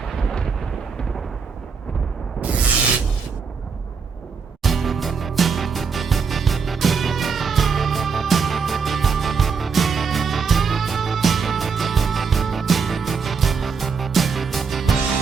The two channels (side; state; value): left; quieter; 5.5 dB